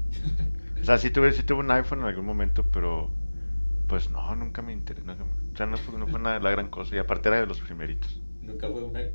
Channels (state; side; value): inverted; both; correlation -1.00